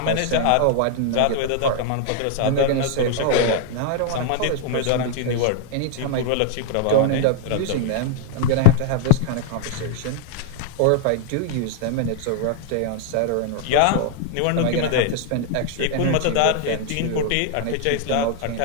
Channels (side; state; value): both; different; correlation 0.00